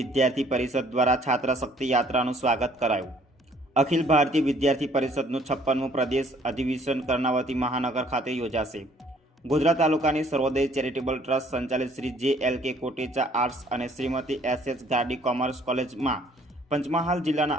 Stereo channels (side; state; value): both; normal; correlation 0.60